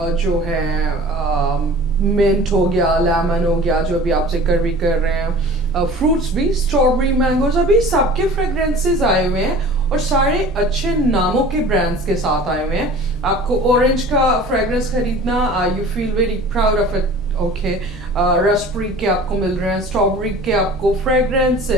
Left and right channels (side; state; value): both; normal; correlation 0.42